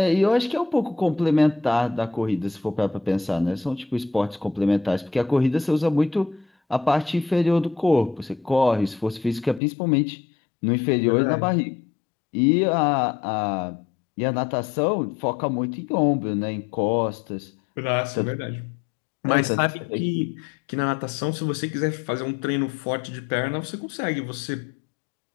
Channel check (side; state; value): right; drops out; at 9.6 s